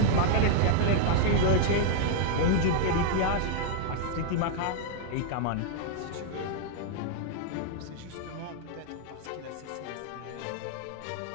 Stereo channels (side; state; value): both; different; correlation -0.01